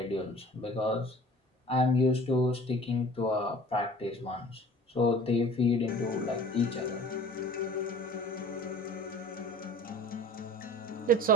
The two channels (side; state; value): both; normal; correlation 0.45